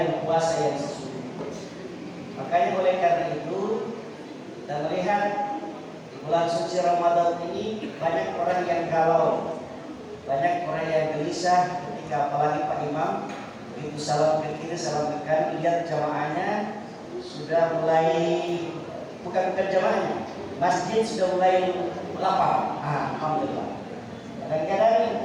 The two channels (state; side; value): identical; both; correlation 1.00